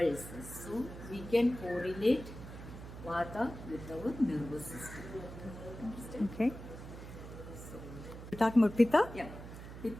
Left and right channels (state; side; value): noise; right; hum, 12 dB below the sound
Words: So we can correlate Vata with our nervous system. Understand? Okay. We're talking about Pitta? Yeah.